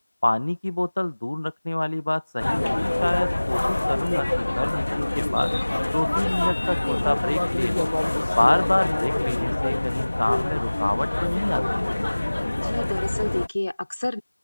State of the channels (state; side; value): inverted; both; correlation -1.00